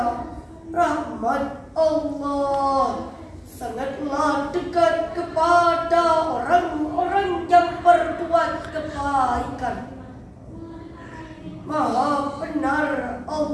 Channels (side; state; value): both; identical; correlation 1.00